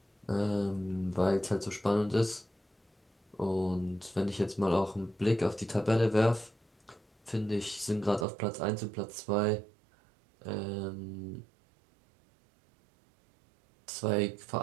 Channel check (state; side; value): drops out; left; at 8.2 s